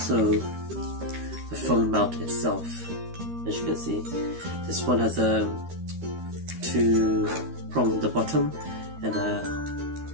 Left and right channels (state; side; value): late; left; 13 ms